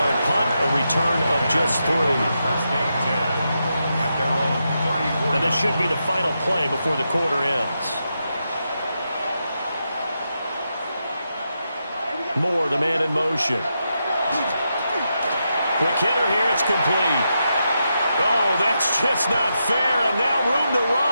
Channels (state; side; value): inverted; both; correlation -0.85